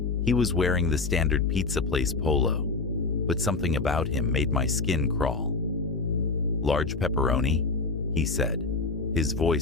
He was wearing the standard pizza place polo, but something about him made my skin crawl. "Large pepperoni?" he said, his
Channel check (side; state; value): right; quieter; 3.9 dB